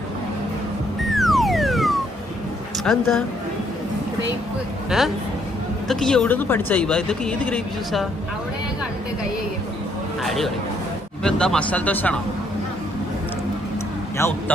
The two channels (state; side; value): normal; both; correlation 0.69